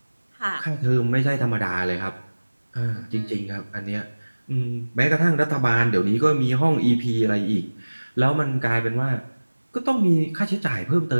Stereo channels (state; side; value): inverted; both; correlation -1.00